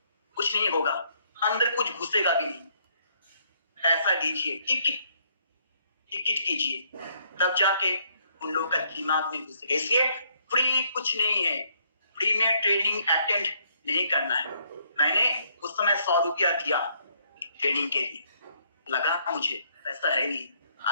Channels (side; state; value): both; inverted; correlation -0.69